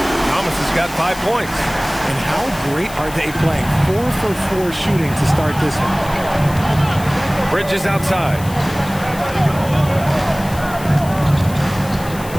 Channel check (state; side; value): noise; left; hiss, 16 dB below the sound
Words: Thomas has got 5 points. And how great are they playing? 4 for 4 shooting to start this one. Bridges outside.